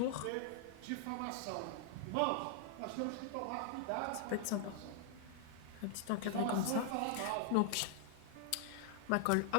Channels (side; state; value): both; different; correlation 0.00